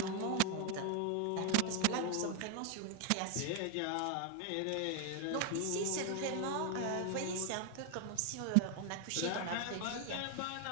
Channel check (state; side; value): different; both; correlation 0.01